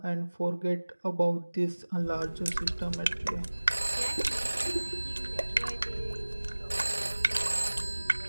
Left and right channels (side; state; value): both; inverted; correlation -1.00